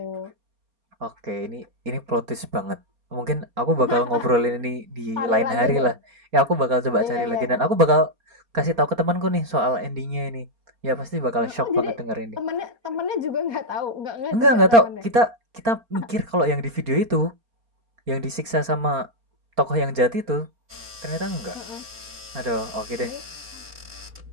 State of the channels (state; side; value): late; left; 4.3 ms